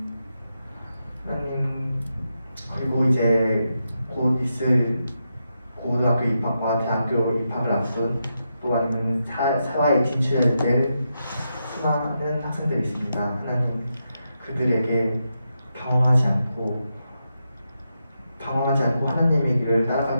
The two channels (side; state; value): both; inverted; correlation -0.85